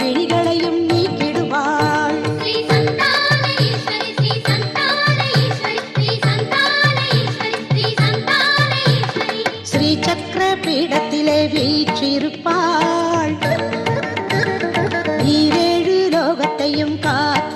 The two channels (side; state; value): both; identical; correlation 1.00